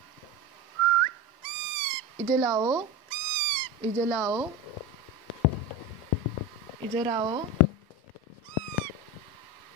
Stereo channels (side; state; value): both; normal; correlation 0.24